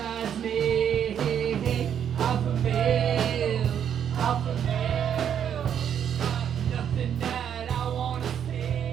me? Off a bill, off a bill. Nothing that I wanna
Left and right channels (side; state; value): left; quieter; 8.8 dB